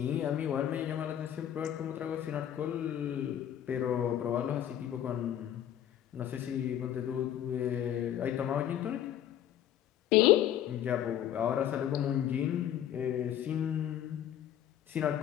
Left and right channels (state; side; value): quieter; right; 10.8 dB